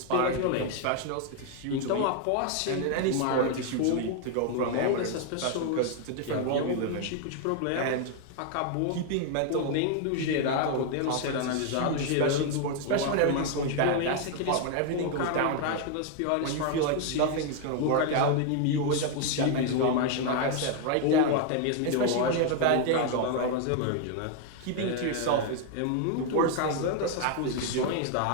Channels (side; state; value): both; different; correlation 0.00